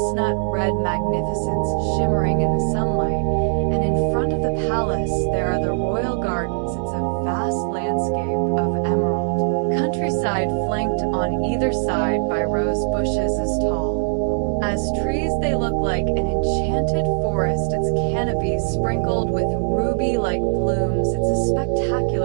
red magnificence shimmering in the sunlight. And in front of the palace, there are the royal gardens. It's a vast landscape of emerald countryside, flanked on either side by rose bushes as tall as trees. They look like an enchanted forest, its canopy sprinkled with ruby-like blooms. It's a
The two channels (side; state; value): left; silent; digital silence